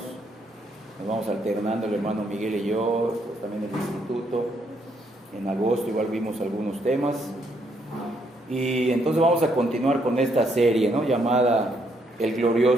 Nos vamos alternando el hermano Miguel y yo, pues también el instituto. En agosto igual vimos algunos temas. Y entonces vamos a continuar con esta serie, ¿no?, llamada El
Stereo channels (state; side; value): normal; both; correlation 0.73